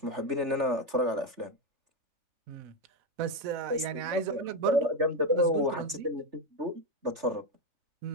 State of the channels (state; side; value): late; left; 3.4 ms